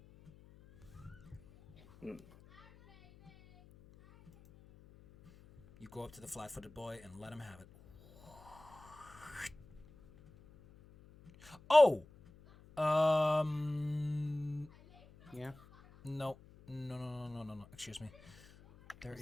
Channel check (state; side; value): noise; left; hum, 23 dB below the sound